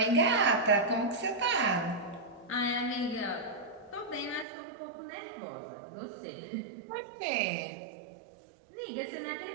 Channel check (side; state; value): left; drops out; at 4.5 s